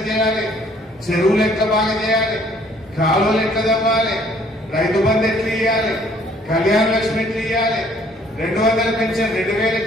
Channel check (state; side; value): normal; both; correlation 0.61